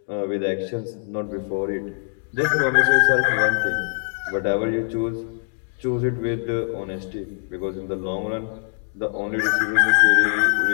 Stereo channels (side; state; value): right; silent; 63 dB below the other